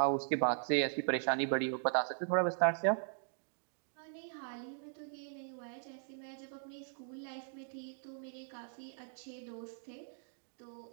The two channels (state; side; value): silent; left; digital silence